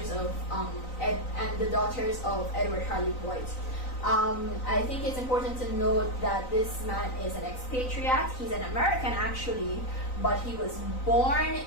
of Edward Harley Boyd. I think it's important to note that this man is an expatriate. He's an American actually, but he was born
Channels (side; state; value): right; late; 3.9 ms